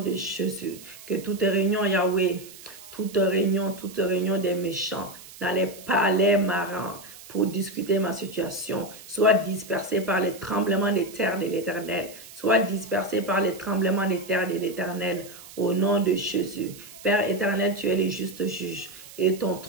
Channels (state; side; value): noise; right; hiss, 18 dB below the sound